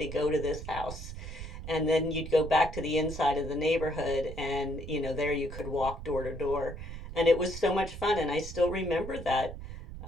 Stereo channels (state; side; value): noise; right; rumble, 10 dB below the sound